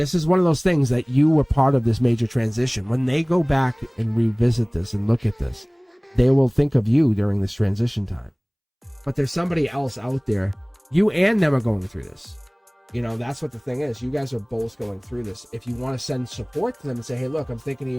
is one of those things that you were part of this major transition. When they go back and revisit this and look at this, they will think of you during this transition time. But there's somebody else out there. You and them are going through this. That's what the thing is. You guys are both going through this. If you want to send support to them and say, hey, look, I'm thinking of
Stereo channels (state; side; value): identical; both; correlation 1.00